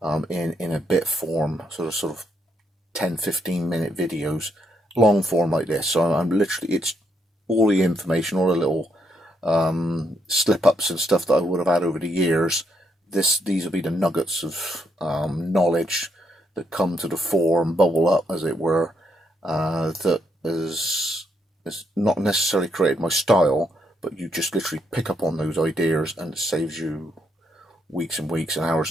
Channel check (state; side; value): normal; both; correlation 0.76